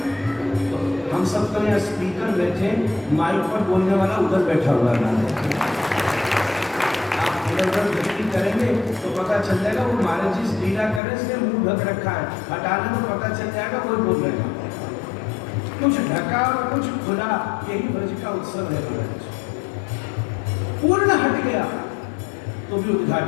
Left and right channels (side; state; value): right; drops out; at 11.0 s